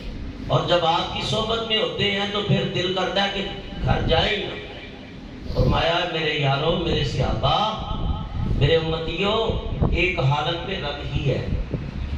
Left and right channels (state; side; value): identical; both; correlation 1.00